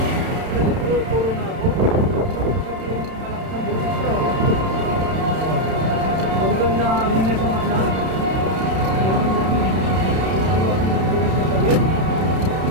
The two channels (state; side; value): late; left; 31 ms